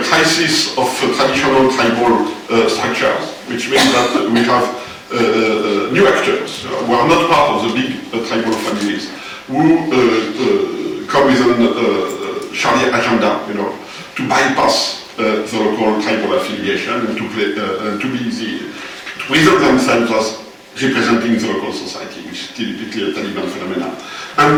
crisis of traditional tribal structures, which means that we have new actors who are not part of the big tribal families, who come with a Sharia agenda, to bypass the local tribal affiliation and to present themselves as representing the local society, which is typically a Taliban phenomenon.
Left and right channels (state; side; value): identical; both; correlation 1.00